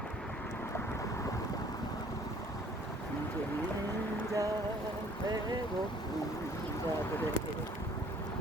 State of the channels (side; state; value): both; normal; correlation 0.56